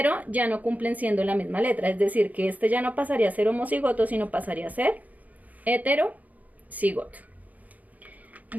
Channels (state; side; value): late; left; 0.077 ms